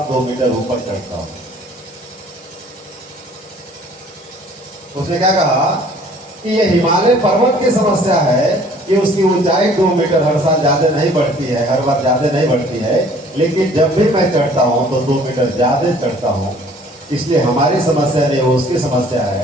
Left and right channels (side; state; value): both; normal; correlation 0.55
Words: 2 मीटर ऊपर चढ़ता हूं। उसने क्या कहा कि ये हिमालय पर्वत की समस्या है कि उसकी ऊंचाई 2 मीटर हर साल ज्यादा नहीं बढ़ती है, हर बार ज्यादा नहीं बढ़ती है, लेकिन जब भी मैं चढ़ता हूं तो 2 मीटर ज्यादा चढ़ता हूं। इसलिए हमारी समस्या नहीं, वो उसकी समस्या